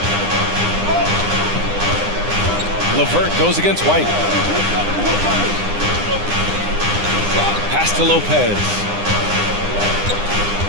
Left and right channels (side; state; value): left; late; 9.8 ms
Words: LeVert goes against White. Pass to Lopez.